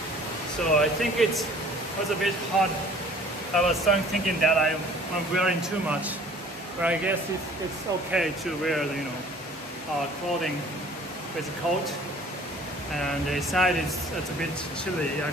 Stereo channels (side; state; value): both; normal; correlation 0.51